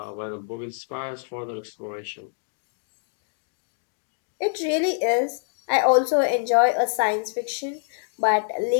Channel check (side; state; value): right; silent; digital silence